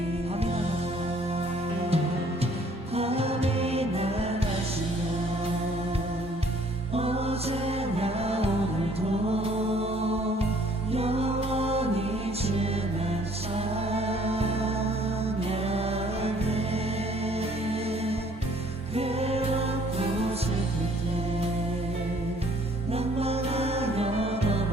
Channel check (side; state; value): both; normal; correlation 0.59